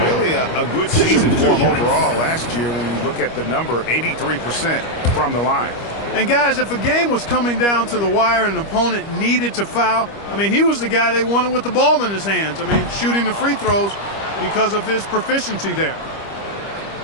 Really a good season for him overall last year when you look at the number, 83% from the line. And, guys, if a game was coming down to the wire and an opponent needed to foul, I mean, he was the guy they wanted with the ball in his hands. I mean, shooting the free throws because of his proficiency there.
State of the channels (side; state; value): right; late; 25 ms